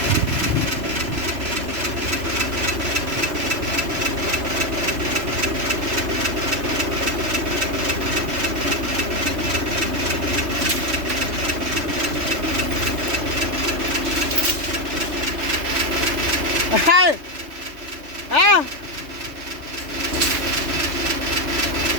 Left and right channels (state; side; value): late; left; 3.3 ms